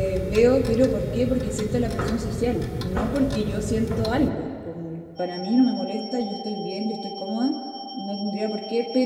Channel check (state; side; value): identical; both; correlation 1.00